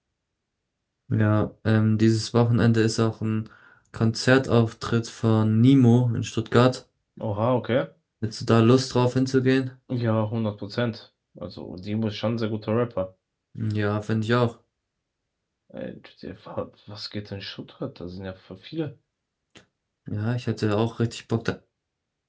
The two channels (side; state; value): both; identical; correlation 1.00